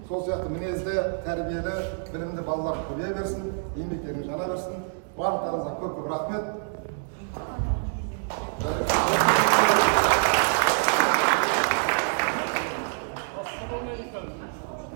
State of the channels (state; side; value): silent; left; digital silence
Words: Сол сияқты мінезді, тәрбиелі, білімді балалар көбейе берсін, еңбектерің жана берсін. Барлықтарыңызға көп-көп рахмет.